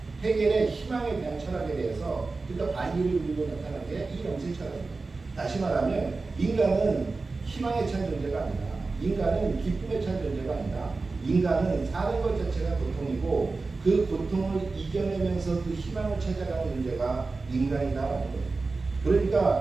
헤겔의 희망에 대한 철학에 대해서, 그러니까 반기를 이루고 나타난 게 이 영생 철학입니다. 다시 말하면 인간은 희망에 찬 존재가 아니다. 인간은 기쁨에 찬 존재가 아니다. 인간은 사는 것 자체가 고통이고 그 고통을 이겨내면서 그 희망을 찾아가는 존재가 인간이다라는 거예요.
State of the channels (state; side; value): quieter; left; 3.8 dB